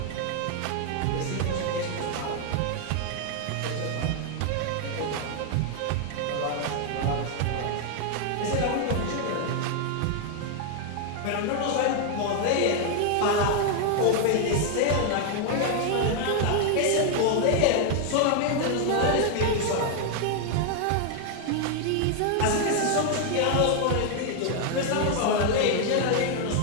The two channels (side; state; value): both; different; correlation 0.00